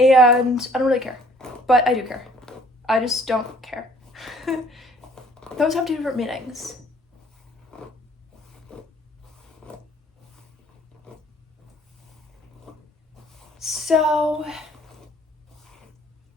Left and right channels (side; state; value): both; normal; correlation 0.57